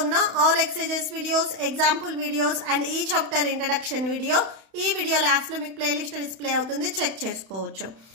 ఉన్న all exercises videos, example videos and ఈ చాప్టర్ ఇంట్రడక్షన్ వీడియో ఈ వీడియో లాస్ట్ లో మీకు ప్లేలిస్ట్ డిస్ప్లే అవుతుంది, చెక్ చేసుకోవచ్చు.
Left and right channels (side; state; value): left; late; 31 ms